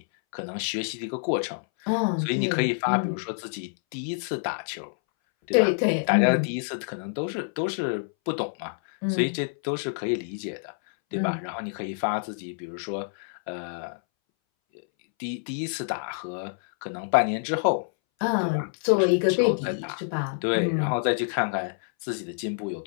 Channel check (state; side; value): silent; right; 60 dB below the other